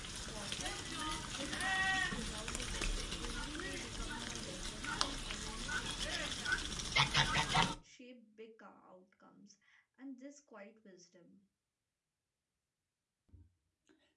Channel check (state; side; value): identical; both; correlation 1.00